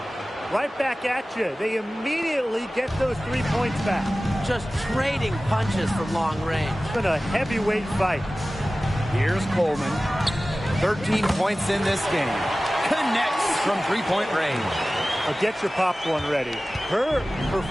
Right back at you. They immediately get those 3 points back. Just trading punches from long range. It's been a heavyweight fight. Here's Coleman. 13 points in this game. Connects from three-point range. Get your popcorn ready. Her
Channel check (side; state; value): both; normal; correlation 0.97